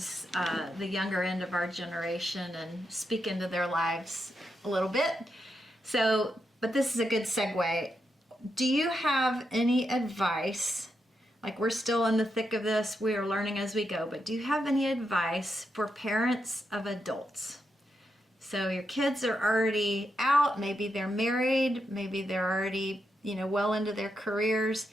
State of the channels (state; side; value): normal; both; correlation 0.84